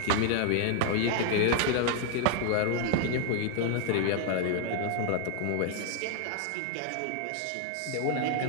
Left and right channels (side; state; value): both; different; correlation 0.00